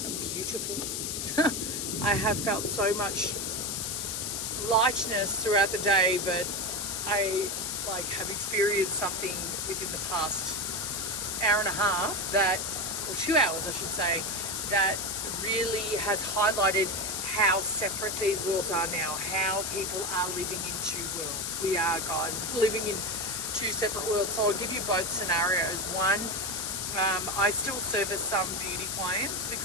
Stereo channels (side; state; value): left; noise; hiss, 2 dB below the sound